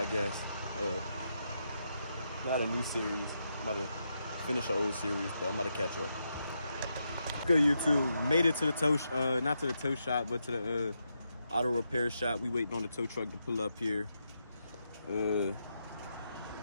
guess. Not a new series. I'm about to finish an old series, but I'm about to catch up. Good YouTube, made it to the tow, not to the tow shop, but to the auto repair shop. We waiting on the tow truck to pull up here. I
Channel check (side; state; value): both; inverted; correlation -0.83